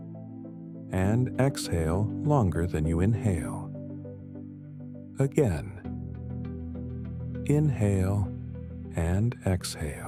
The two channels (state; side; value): identical; both; correlation 1.00